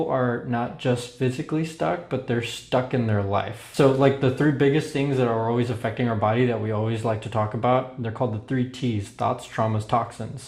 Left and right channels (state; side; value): identical; both; correlation 1.00